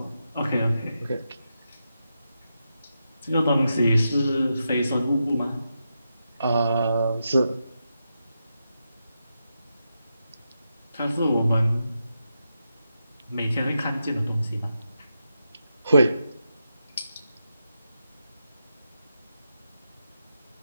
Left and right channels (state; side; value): inverted; both; correlation -0.86